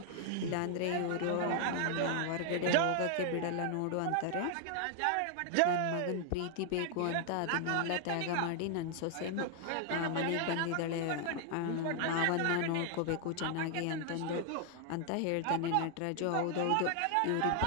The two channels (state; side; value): different; both; correlation 0.00